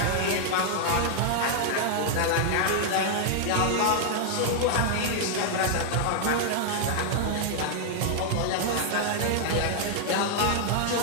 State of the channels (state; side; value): different; both; correlation 0.00